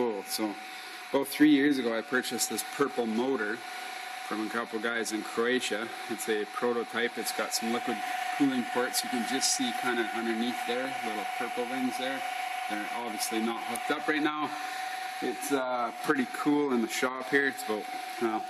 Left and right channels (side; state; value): both; identical; correlation 1.00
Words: So about 3 years ago I purchased this purple motor from a couple guys in Croatia. It's a prototype. It's got some liquid cooling ports. You can just see kind of underneath there, little purple things there. They're obviously not hooked up right now. It's pretty cool in the shop here. It's about